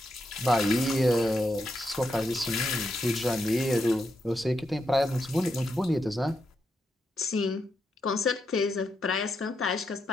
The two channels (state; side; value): normal; both; correlation 0.83